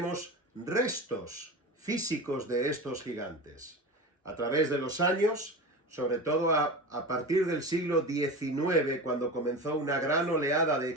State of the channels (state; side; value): normal; both; correlation 0.28